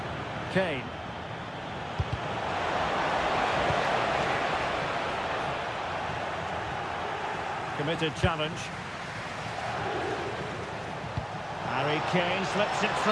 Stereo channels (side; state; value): both; identical; correlation 1.00